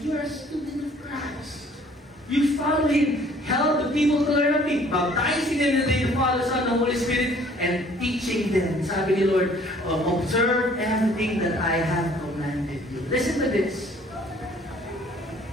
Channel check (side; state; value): both; normal; correlation 0.57